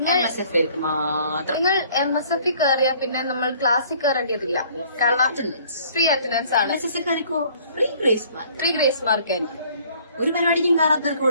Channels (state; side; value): inverted; both; correlation -0.57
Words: മാത്രം. നിങ്ങൾ MSF കയറിയാ പിന്നെ നമ്മൾ ക്ലാസ്സിൽ കയറേണ്ടതില്ല. കാരണം ഫ്രീ അറ്റൻഡൻസ് ആണ്. ഫ്രീ ഗ്രേസ് മാർക്ക് ആയിരിക്കും. ഒരു പരിപാടിക്കും കയറാത്തവർക്ക്